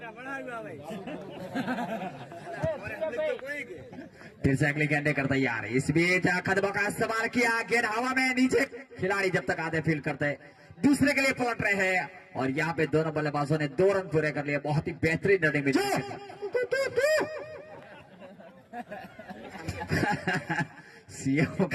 फिर से अगली गेंदे करता यार। इस बीच कदमों का इस्तेमाल किया, गेंद हवा में नीचे, खिलाड़ी जब तक आधे फील्ड करते दूसरे के लिए पलट रहे हैं और यहाँ पे दोनों बल्लेबाजों ने 2 रन पूरे कर लिए। बहुत ही बेहतरीन रनिंग में सीएम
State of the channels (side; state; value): both; identical; correlation 1.00